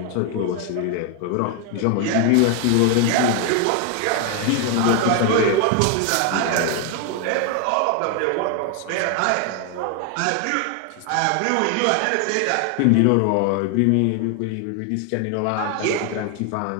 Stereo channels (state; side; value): different; both; correlation 0.01